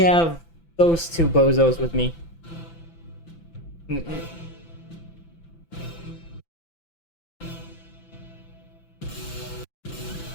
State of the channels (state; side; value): late; right; 5.9 ms